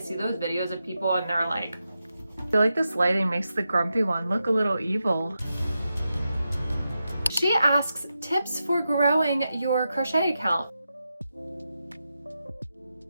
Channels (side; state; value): both; inverted; correlation -0.89